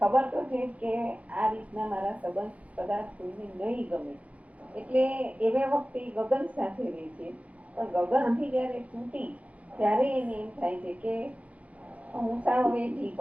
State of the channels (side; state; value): left; late; 0.067 ms